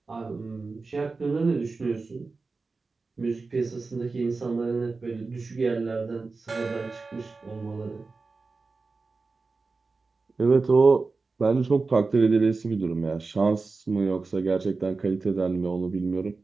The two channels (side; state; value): left; quieter; 4.0 dB